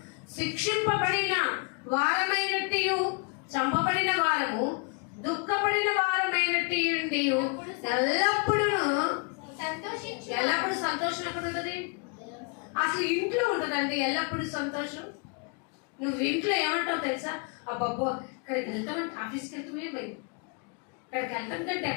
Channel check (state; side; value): quieter; right; 34.2 dB